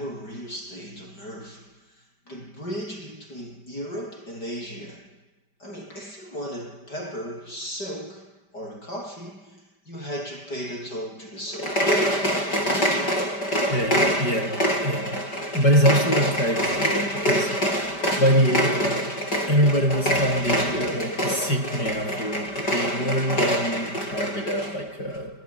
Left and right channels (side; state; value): right; late; 5.1 ms